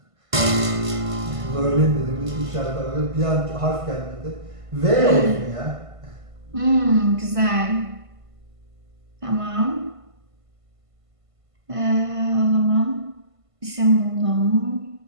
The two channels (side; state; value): left; late; 1.5 ms